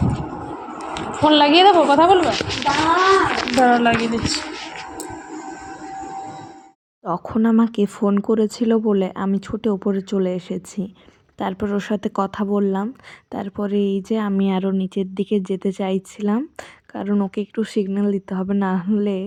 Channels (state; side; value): identical; both; correlation 1.00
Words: ফোন লাগিয়ে দেবো, কথা বলবে। দাও। দাঁড়াও লাগিয়ে দিচ্ছি। তখন আমাকে ফোন করেছিল বলে আমি ছুটে ওপরে চলে এসেছি। তারপর ওর সাথে কথা বললাম। তারপরে এই যে আমি আরও নিচের দিকে যেতে চাইছিলাম, কারণ ওকে একটু সিগন্যাল দিতে হবে, না হলে